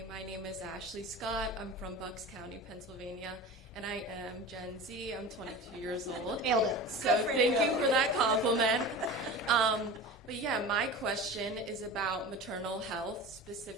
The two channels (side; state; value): both; normal; correlation 0.33